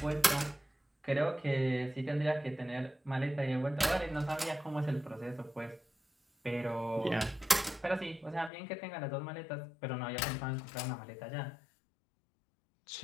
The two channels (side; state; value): right; drops out; at 8.5 s